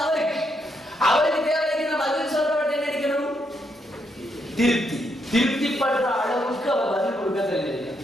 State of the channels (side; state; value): both; normal; correlation 0.78